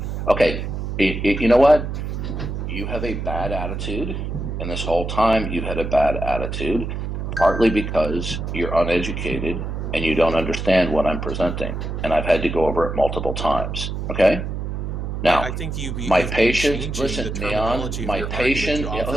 Okay. You know what? You have a bad attitude, and this whole time you've had a bad attitude, partly because you're uneducated and you don't understand what I'm presenting, and I've had to go over it multiple times. Okay. Now, I think my patient, listen, Neon, my patient,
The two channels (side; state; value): right; noise; hum, 4 dB below the sound